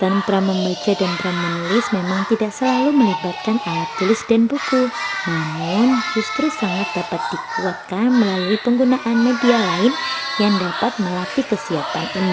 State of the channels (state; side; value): identical; both; correlation 1.00